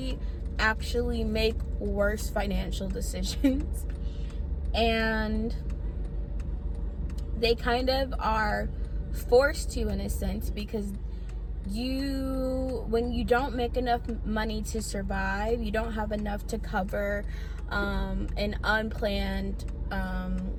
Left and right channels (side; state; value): both; identical; correlation 1.00